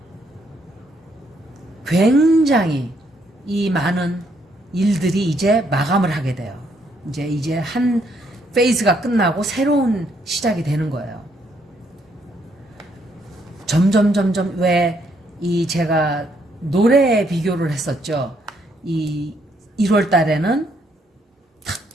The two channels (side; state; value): both; normal; correlation 0.72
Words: 굉장히 이 많은 일들이 이제 마감을 하게 돼요. 이제 한 페이즈가 끝나고 새로운 시작이 되는 거예요. 점점 왜 이 제가 노래 비교를 했었죠. 이 1월 달에는